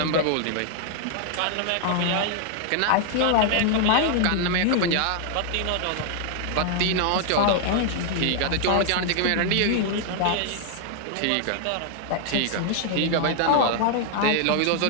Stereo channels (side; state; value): both; different; correlation 0.00